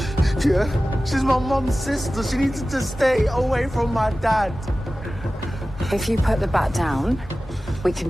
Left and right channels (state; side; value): normal; both; correlation 0.96